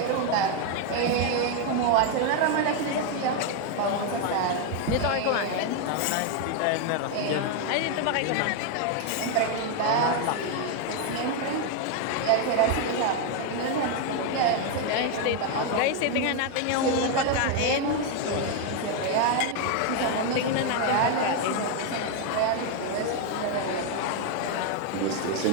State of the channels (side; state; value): both; different; correlation 0.01